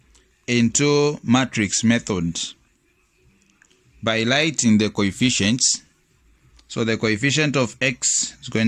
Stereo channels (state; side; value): identical; both; correlation 1.00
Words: into matrix method by writing the coefficients. So the coefficient of x is